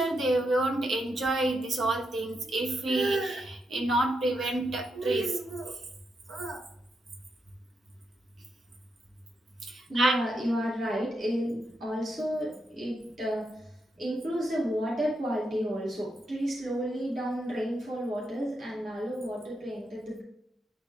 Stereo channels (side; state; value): both; normal; correlation 0.82